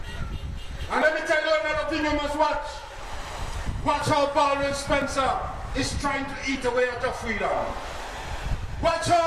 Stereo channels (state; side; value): identical; both; correlation 1.00